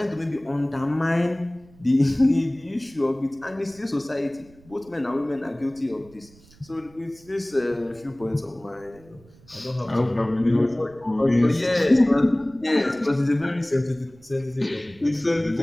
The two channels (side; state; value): right; noise; rumble, 26 dB below the sound